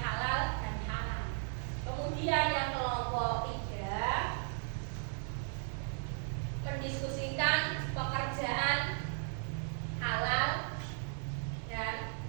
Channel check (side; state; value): left; silent; 54 dB below the other